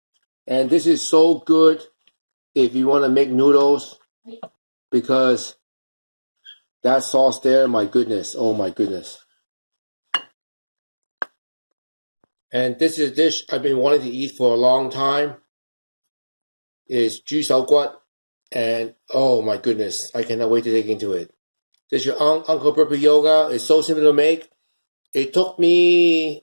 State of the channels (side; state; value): both; inverted; correlation -1.00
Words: And this is so good if you want to make noodles, because that sauce there, my goodness, oh my goodness. And this is a dish I've been wanting to eat for a long time. It's 豬手骨, and oh my goodness, I cannot wait to dig into it. This is your Uncle Burpee Yoga. It's so simple to make. It took